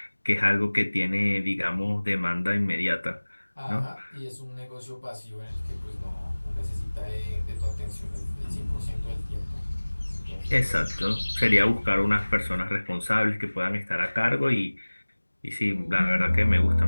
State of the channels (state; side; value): inverted; both; correlation -1.00